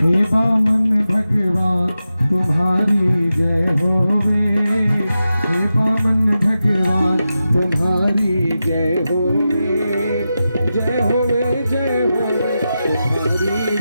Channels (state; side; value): inverted; both; correlation -0.91